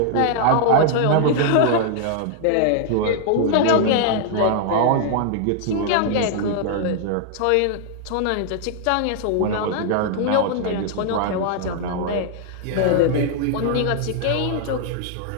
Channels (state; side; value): different; both; correlation 0.00